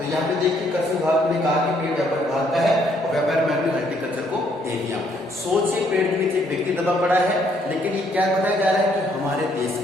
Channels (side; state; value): both; normal; correlation 0.68